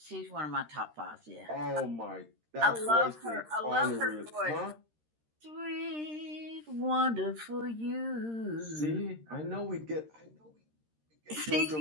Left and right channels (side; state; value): left; late; 13 ms